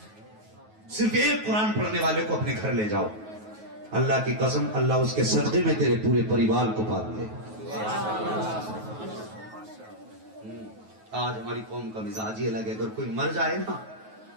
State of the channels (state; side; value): late; left; 9.3 ms